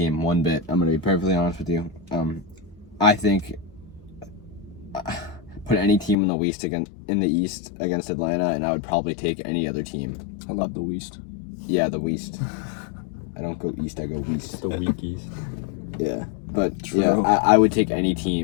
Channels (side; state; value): right; drops out; at 6.2 s